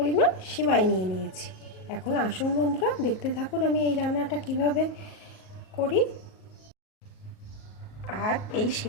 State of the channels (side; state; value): right; late; 38 ms